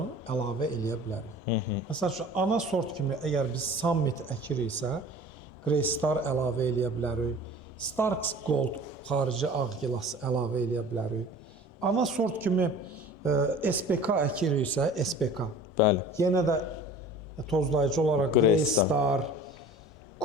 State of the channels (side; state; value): both; normal; correlation 0.42